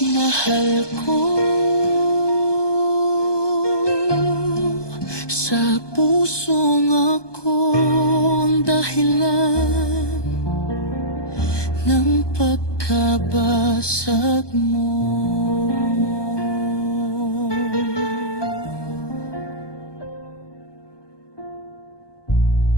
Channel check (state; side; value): late; right; 1.2 ms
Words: mahal ko, sa pusong akong dahilan ng pagkabasag kabasag mo.